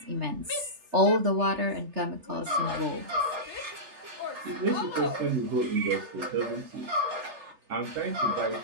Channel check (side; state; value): left; late; 3.3 ms